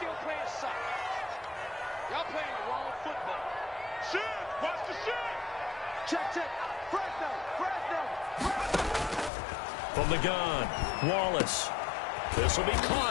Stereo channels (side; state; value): right; drops out; at 9.3 s